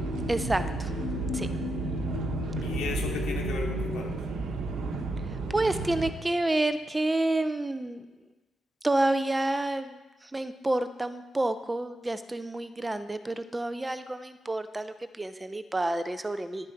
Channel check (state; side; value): normal; both; correlation 0.88